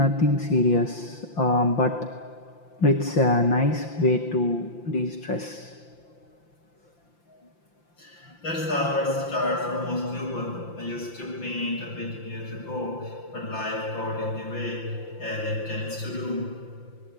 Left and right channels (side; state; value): right; late; 5.8 ms